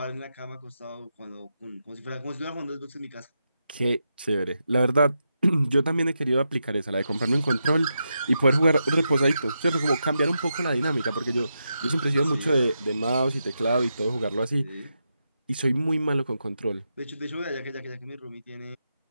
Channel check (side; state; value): both; inverted; correlation -0.86